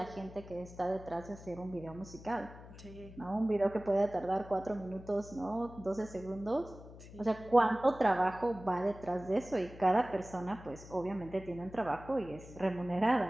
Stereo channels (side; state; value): left; noise; hum, 16 dB below the sound